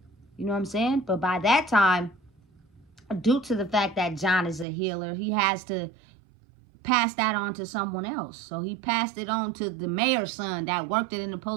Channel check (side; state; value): left; drops out; at 4.7 s